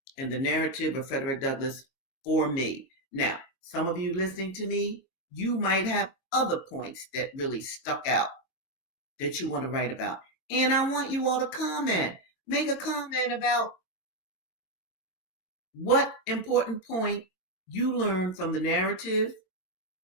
in the narrative of Frederick Douglass for me. Now, some of you listening to me, you might have other points that really stuck out that you want to write about. And I want you all to comment. Make a comment about what important point you learned from the narrative,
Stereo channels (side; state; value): right; late; 22 ms